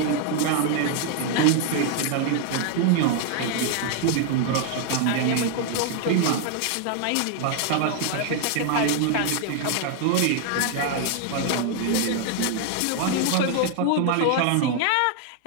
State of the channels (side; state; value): both; different; correlation 0.00